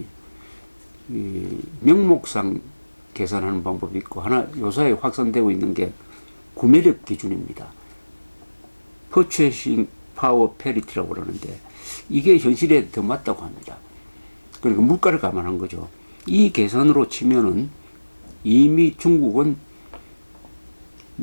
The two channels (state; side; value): inverted; both; correlation -1.00